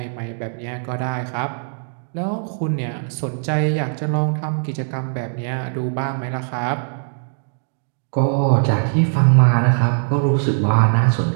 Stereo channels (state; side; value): silent; left; digital silence